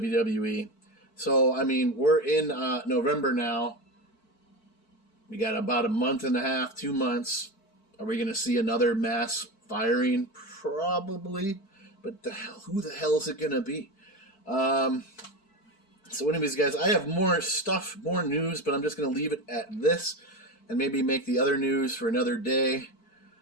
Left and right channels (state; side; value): late; right; 4.5 ms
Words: So, I mean, we're in November now. We got about a month and a half, 2 months. Are we going to see another mass firing? Probably. But who the hell is it going to be? So anyways, guys, I have more stuff, more news, but I'm just going to leave it at this and maybe make the other news for another day.